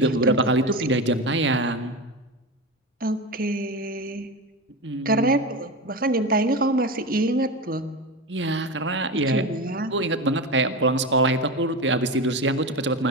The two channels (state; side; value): normal; both; correlation 0.22